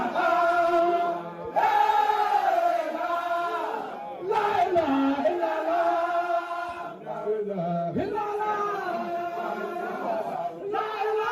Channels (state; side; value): identical; both; correlation 1.00